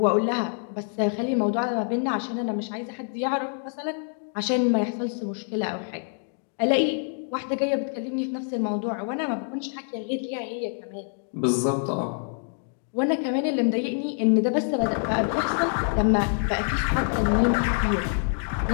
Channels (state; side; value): silent; right; 61 dB below the other